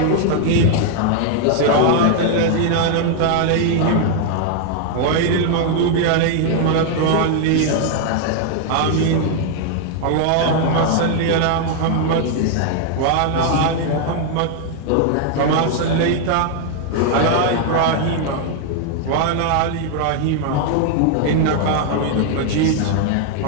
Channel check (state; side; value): different; both; correlation 0.00